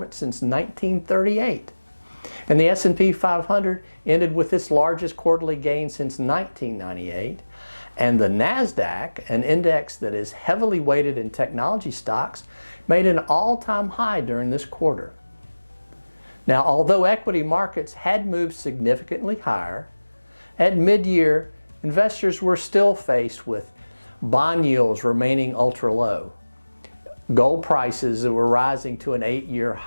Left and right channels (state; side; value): inverted; both; correlation -1.00